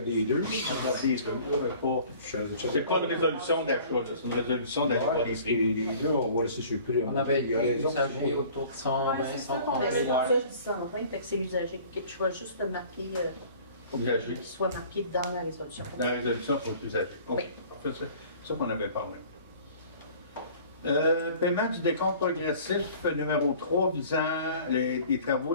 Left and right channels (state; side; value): inverted; both; correlation -0.49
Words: les deux. On regarde les deux, mais pas. C'est pas une résolution d'achat, c'est une résolution d'achat des prix. Là, on va laisser sur le prix. On avait Il y a des raison. usagers autour de 120, Ouais, c'est ça qu'on 130 avait. C'est 000. pour ça que je dis 120, fait que c'est usagé. Je vais juste le marquer, Usagers. qu'il soit marqué dans la résolution. Dans la résolution pour les usagers. OK. Oui. Parfait, c'est ça qu'on avait parlé. Paiement du décompte progressif numéro 3 visant les travaux